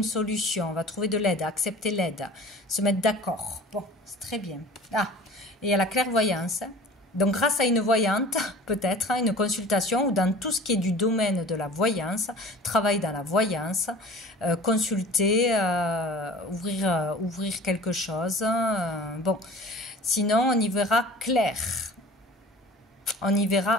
solution, on va trouver de l'aide, accepter l'aide, se mettre d'accord. Bon, c'est très bien. Ah, et il y a la clairvoyance. Donc, grâce à une voyante, peut-être, une consultation, ou dans tout ce qui est du domaine de la voyance, travail dans la voyance, consulter, ouvrir quelque chose. Bon, sinon, on y verra clair. On y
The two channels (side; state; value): both; normal; correlation 0.43